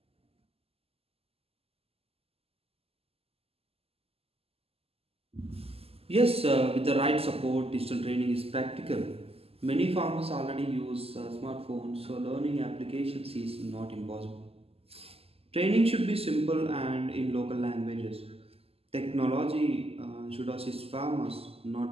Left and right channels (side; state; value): left; late; 0.29 ms